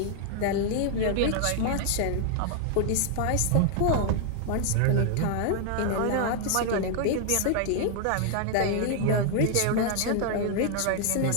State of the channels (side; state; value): both; different; correlation 0.00